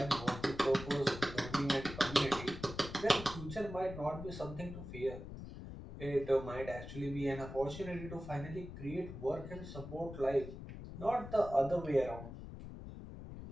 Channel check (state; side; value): noise; left; rumble, 11 dB below the sound